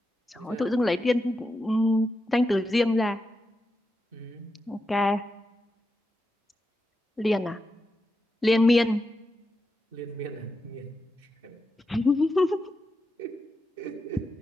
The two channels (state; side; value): normal; both; correlation 0.88